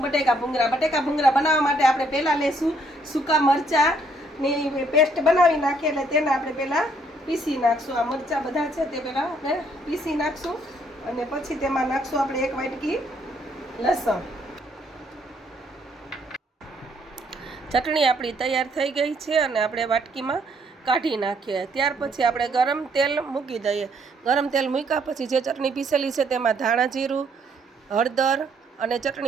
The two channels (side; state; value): both; normal; correlation 0.68